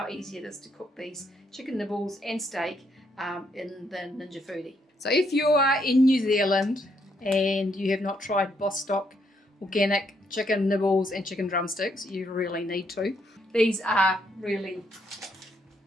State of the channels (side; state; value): both; normal; correlation 0.74